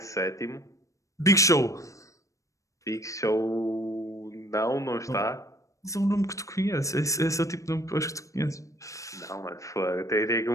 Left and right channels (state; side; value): late; right; 0.16 ms